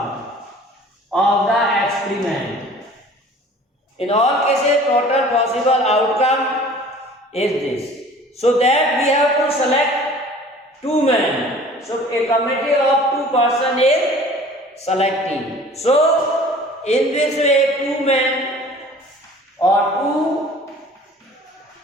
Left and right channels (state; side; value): normal; both; correlation 0.47